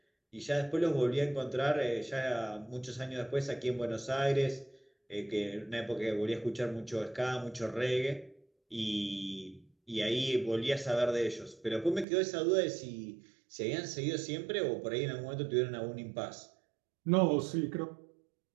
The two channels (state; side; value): drops out; left; at 12.1 s